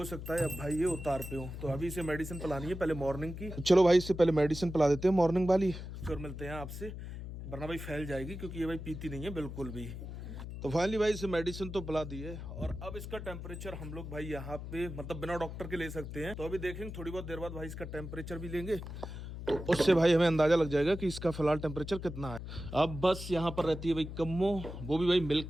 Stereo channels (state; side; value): noise; left; hum, 9 dB below the sound